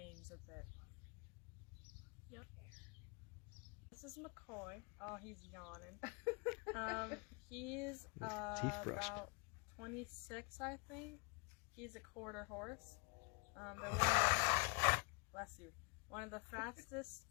a bit. Yep. This is McCoy. Oh, he's yawning. He's about 26, I think. He's a quarter horse. They're one of the fastest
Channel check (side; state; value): right; quieter; 32.3 dB